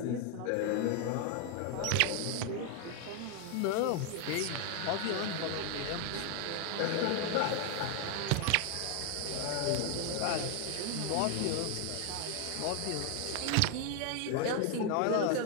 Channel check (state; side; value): different; both; correlation 0.00